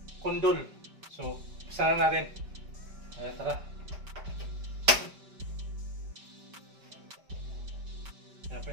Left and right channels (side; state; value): left; late; 4.9 ms